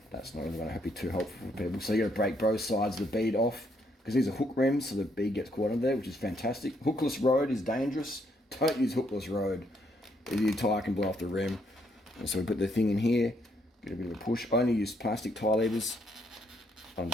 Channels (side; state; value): both; normal; correlation 0.72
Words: that's not really going to be too helpful for people. So you're going to break both sides of the bead off, because these are hook rims, so the bead gets caught in there, which is fantastic. Hookless road is dangerous. Don't use hookless road. Your tyre can blow off the rim. And so we put the thing in here, get a bit of a push. Only use plastic tyre levers